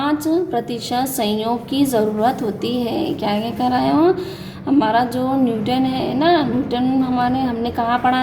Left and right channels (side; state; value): both; identical; correlation 1.00